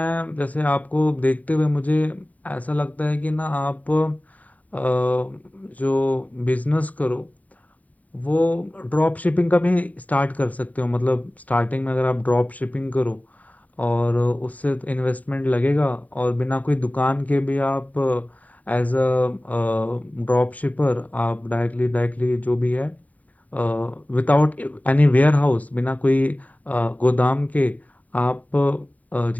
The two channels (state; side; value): late; right; 0.072 ms